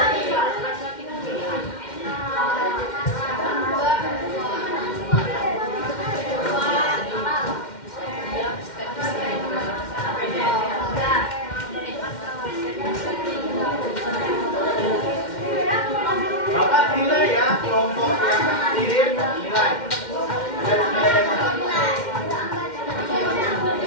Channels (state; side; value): late; right; 2.1 ms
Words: Bapak nilai ya kelompok yang aktif, nilai.